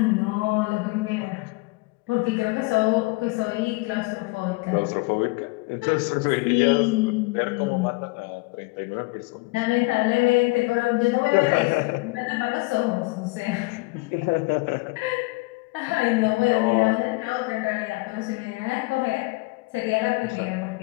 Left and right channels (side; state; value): right; quieter; 25.1 dB